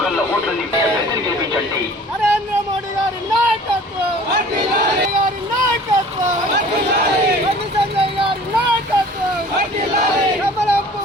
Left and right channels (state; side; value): normal; both; correlation 0.47